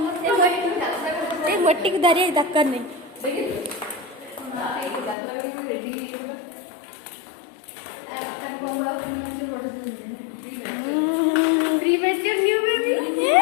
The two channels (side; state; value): right; drops out; at 5.2 s